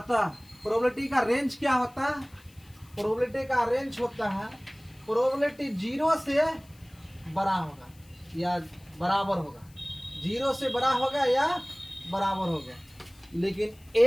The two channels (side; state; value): left; noise; hiss, 28 dB below the sound